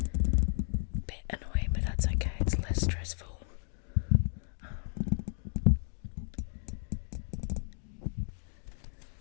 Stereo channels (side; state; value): right; silent; digital silence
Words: a bit annoying, but that's okay. It's less stressful.